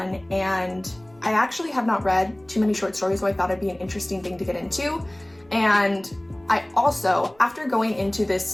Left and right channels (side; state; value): right; noise; rumble, 30 dB below the sound